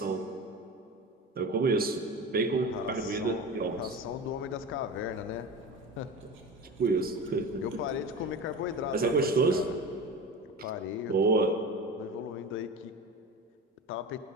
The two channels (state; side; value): normal; both; correlation 0.30